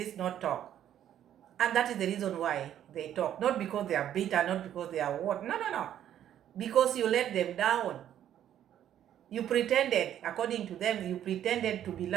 not talk. And that is the reason why they talk. Not because they are bitter, not because they are what. No. Because you let them down. You pretended, according to them, you pretended to be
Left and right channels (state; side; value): quieter; left; 10.8 dB